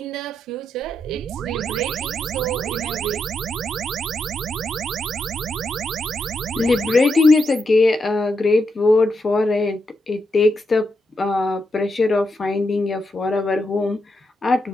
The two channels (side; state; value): both; normal; correlation 0.83